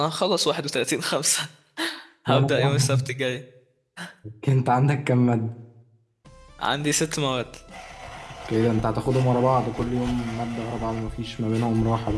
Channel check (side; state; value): both; identical; correlation 1.00